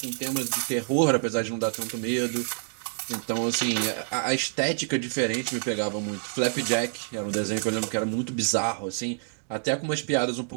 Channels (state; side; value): silent; left; digital silence